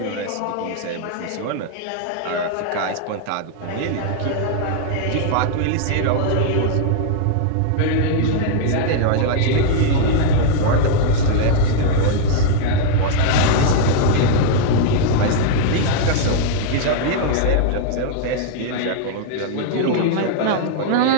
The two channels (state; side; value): different; both; correlation -0.01